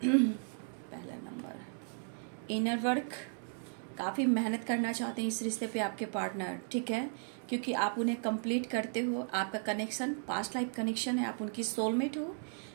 पहला नंबर, इनर वर्क, काफ़ी मेहनत करना चाहते हैं इस रिश्ते पे आपके पार्टनर, ठीक है, क्योंकि आप उन्हें कंप्लीट करते हो, आपका कनेक्शन पास्ट लाइफ कनेक्शन है, आप उनकी सोलमेट हो,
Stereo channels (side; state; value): left; silent; 54 dB below the other